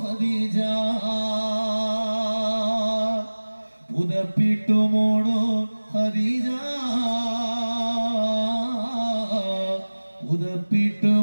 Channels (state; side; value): inverted; both; correlation -1.00